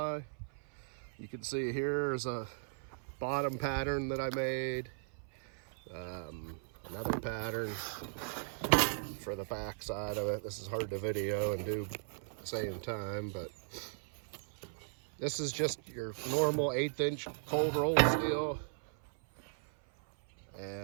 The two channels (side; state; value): left; silent; 53 dB below the other